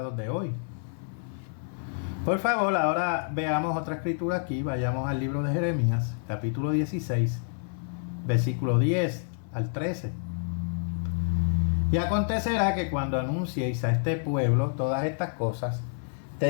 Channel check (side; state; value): right; silent; 59 dB below the other